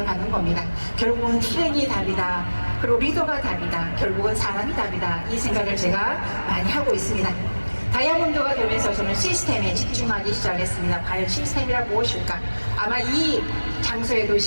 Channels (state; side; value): inverted; both; correlation -1.00